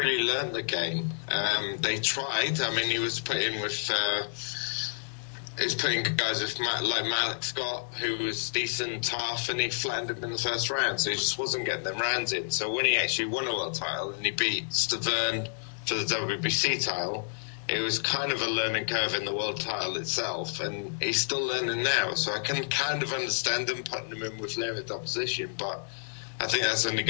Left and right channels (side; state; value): right; silent; digital silence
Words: learned the game. They tried. I mean, he was putting guys with like Malik Scott, who was decent, tough, and he flattened him in the first round. So he just wasn't getting them rounds in. So when he actually won a world title and he beat Stavern for the WBC title, it was kind of a learning curve in the world title itself, and he's still learning now. So I can kind of understand them putting him in with limited opposition, but I think that's only